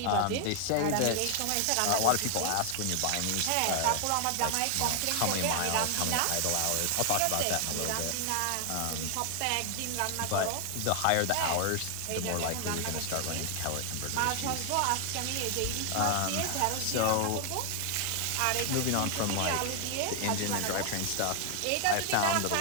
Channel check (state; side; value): different; both; correlation 0.00